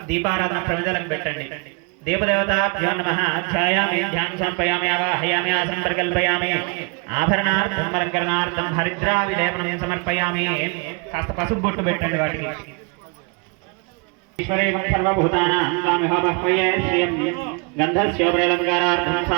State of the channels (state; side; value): quieter; left; 31.9 dB